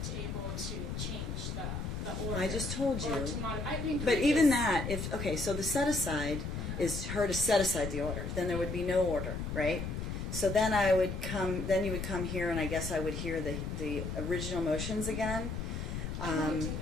able to change the order. I just told or you. to modify. I mean, But even previous- that, okay, so the set aside is her to set aside the order. Then there would be no order, right? So then you would come here, and I guess I would hear the original motions again. I won't do that.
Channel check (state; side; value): noise; left; rumble, 4 dB below the sound